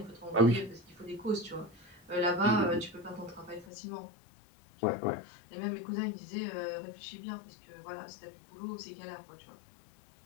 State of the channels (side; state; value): right; drops out; at 3.7 s